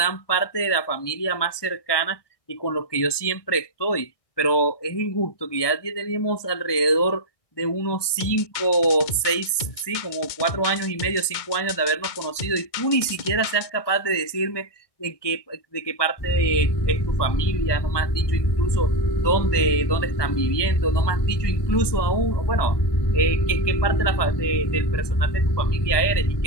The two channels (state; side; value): late; right; 1.2 ms